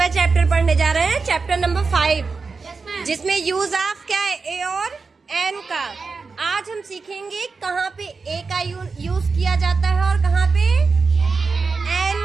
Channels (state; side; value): quieter; left; 4.5 dB